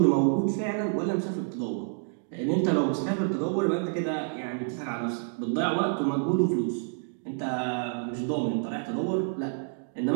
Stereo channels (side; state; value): left; silent; digital silence